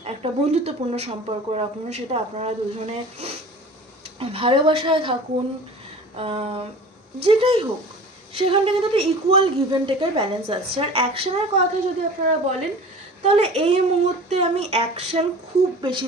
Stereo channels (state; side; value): normal; both; correlation 0.40